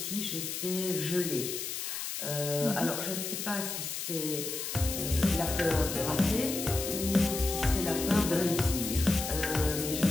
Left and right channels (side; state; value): left; noise; hiss, 4 dB below the sound